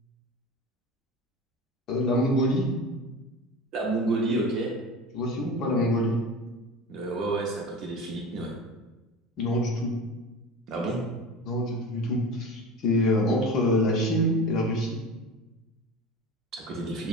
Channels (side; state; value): both; normal; correlation 0.32